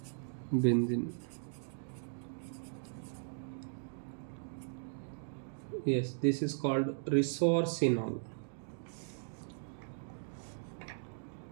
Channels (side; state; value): left; silent; digital silence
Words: Yes, this is called resorcinol.